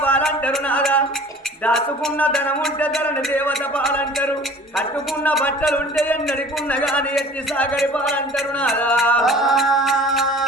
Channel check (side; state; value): both; normal; correlation 0.46